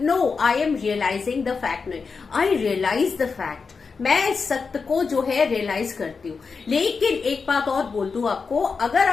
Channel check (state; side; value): quieter; right; 5.0 dB